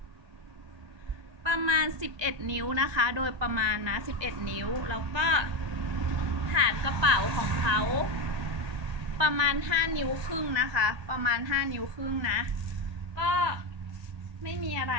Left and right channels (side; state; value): left; late; 1.2 ms